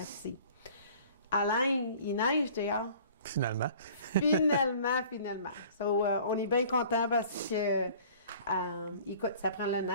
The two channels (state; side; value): inverted; both; correlation -0.50